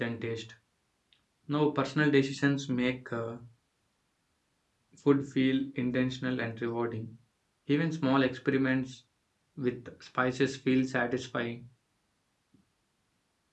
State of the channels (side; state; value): both; identical; correlation 1.00